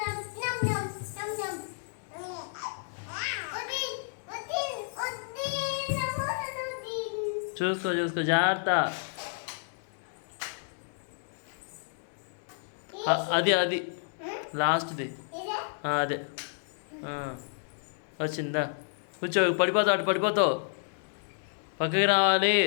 చూసుకో చూసుకో జాగ్రత్త. అది అది లాస్ట్ది అదే వచ్చిందా? కూర్చో. పడిపోతావు, అటు పడిపోతావు. పక్కకి రావాలి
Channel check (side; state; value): right; silent; digital silence